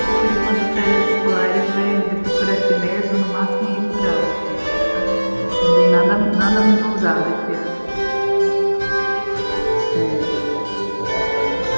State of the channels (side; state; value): both; inverted; correlation -1.00